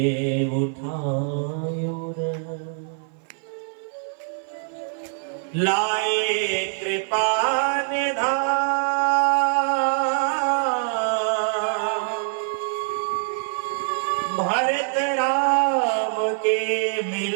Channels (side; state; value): left; silent; 56 dB below the other